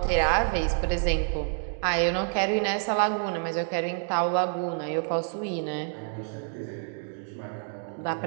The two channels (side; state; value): left; silent; 58 dB below the other